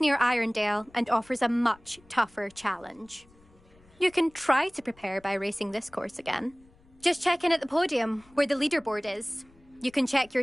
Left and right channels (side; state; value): left; noise; rumble, 29 dB below the sound